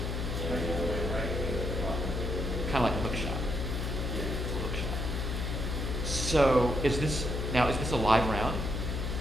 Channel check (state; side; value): noise; left; hum, 1 dB below the sound